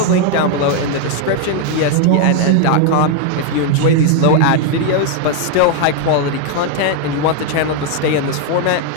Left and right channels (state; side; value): different; both; correlation 0.01